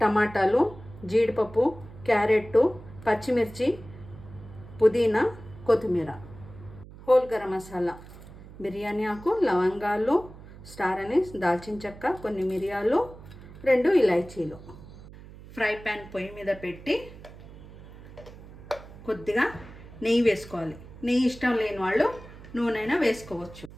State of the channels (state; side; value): noise; right; hum, 17 dB below the sound